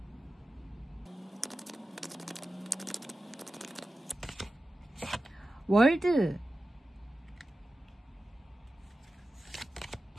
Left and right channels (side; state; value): both; normal; correlation 0.93